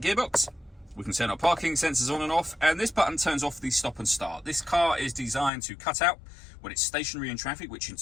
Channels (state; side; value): drops out; right; at 5.5 s